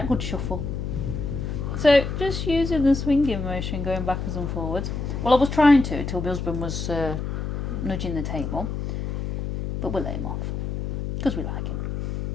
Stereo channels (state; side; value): noise; left; hum, 3 dB below the sound